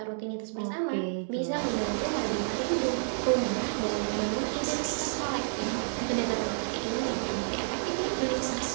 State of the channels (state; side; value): silent; left; digital silence